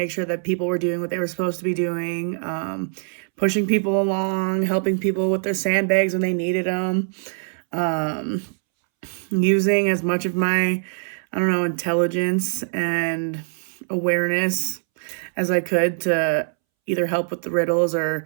sure that people were doing what they were supposed to be doing, pushing people along, helping people with their sandbags when they needed them, um, using as much of my, I don't know, intelligence and awareness as I could to either help with the riddles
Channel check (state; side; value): silent; left; 64 dB below the other